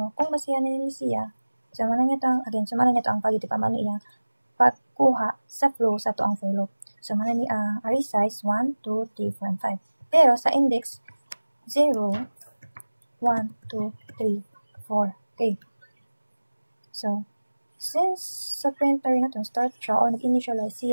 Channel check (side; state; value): both; inverted; correlation -1.00